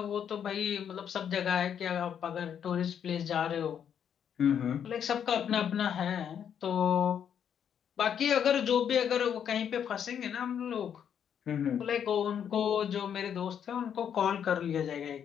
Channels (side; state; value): right; quieter; 8.5 dB